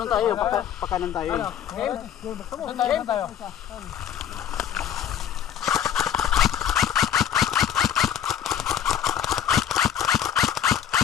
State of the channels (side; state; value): right; quieter; 9.7 dB